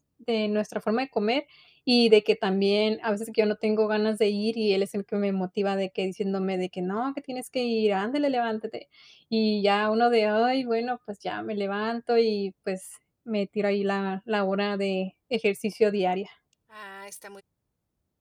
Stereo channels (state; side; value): identical; both; correlation 1.00